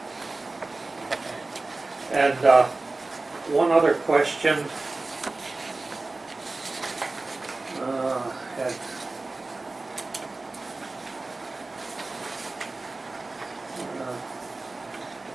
And one other question. Had-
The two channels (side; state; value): left; quieter; 3.3 dB